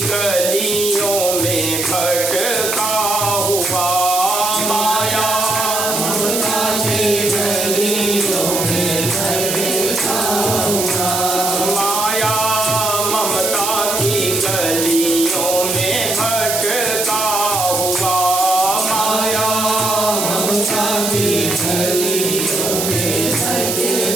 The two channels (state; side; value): noise; right; hiss, 1 dB below the sound